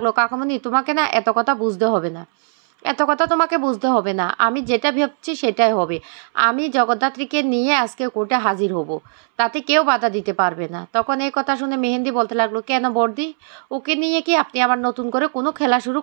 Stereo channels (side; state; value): left; silent; 66 dB below the other